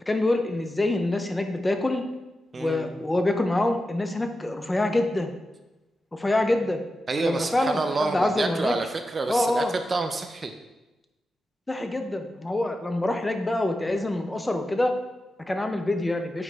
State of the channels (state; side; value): normal; both; correlation 0.91